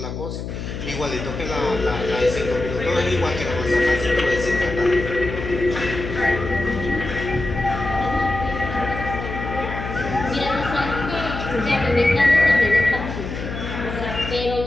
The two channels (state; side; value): noise; left; hum, 7 dB below the sound